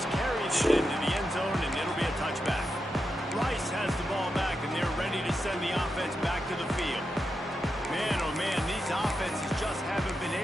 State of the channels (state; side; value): normal; both; correlation 0.87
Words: carried it into the end zone, and it'll be a touchback. Rice has the ball back, and they're ready to send the offense back to the field. Man, oh man, these offenses just haven't been